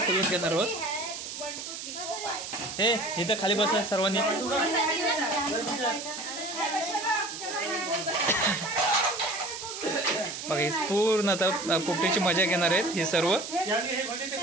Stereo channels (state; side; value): noise; right; hiss, 8 dB below the sound